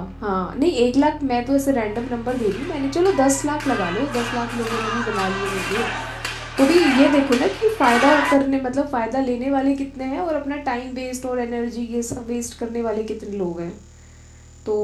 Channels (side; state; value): both; identical; correlation 1.00